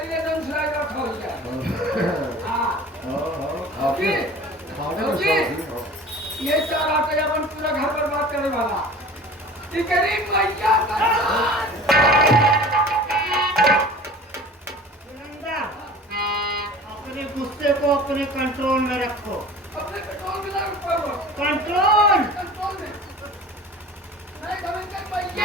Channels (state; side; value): normal; both; correlation 0.41